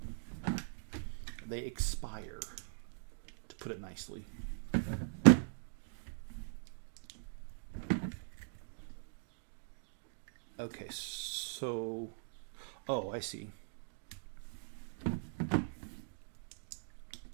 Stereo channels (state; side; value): silent; left; digital silence